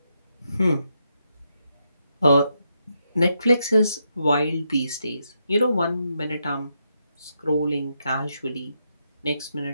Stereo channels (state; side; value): inverted; both; correlation -0.82